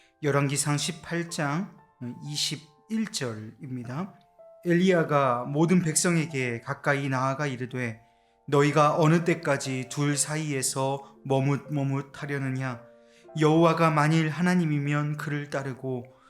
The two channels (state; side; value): identical; both; correlation 1.00